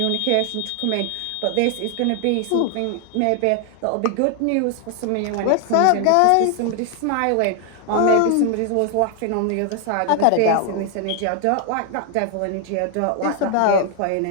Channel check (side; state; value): both; different; correlation 0.00